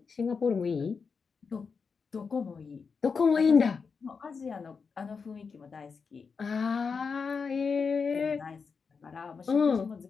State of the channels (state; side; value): quieter; right; 5.4 dB